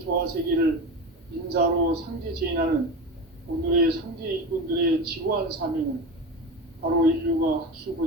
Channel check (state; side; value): normal; both; correlation 0.25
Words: 조화세계를 인사로 상제 제인하는 오늘의 상제 일꾼들의 지고한 사명은 바로 인류가